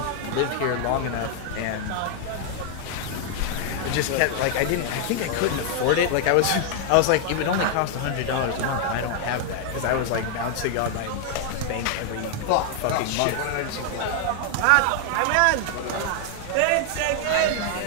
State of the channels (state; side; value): different; both; correlation 0.00